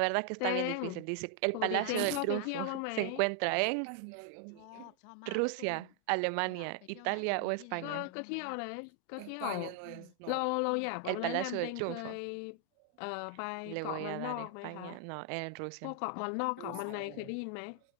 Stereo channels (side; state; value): both; different; correlation 0.00